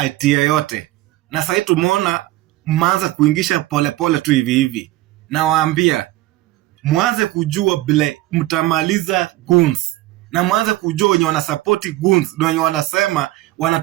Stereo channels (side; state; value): left; quieter; 17.1 dB